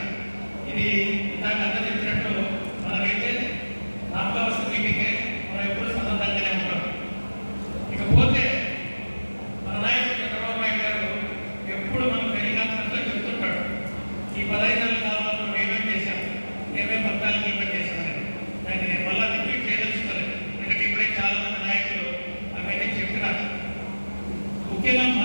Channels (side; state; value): both; inverted; correlation -1.00